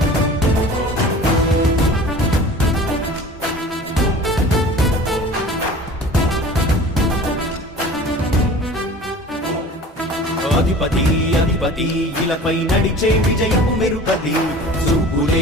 అధిపతి అధిపతి ఇలపై నడిచే విజయము మెరుపది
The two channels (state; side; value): normal; both; correlation 0.42